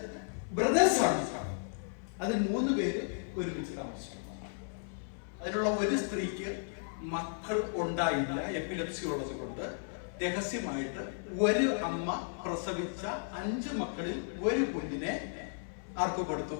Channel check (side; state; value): right; silent; 55 dB below the other